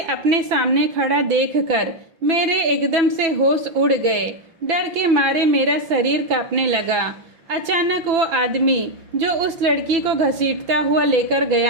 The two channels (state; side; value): late; left; 5.8 ms